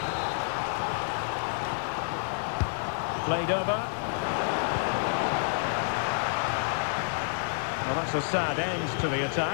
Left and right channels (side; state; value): right; silent; digital silence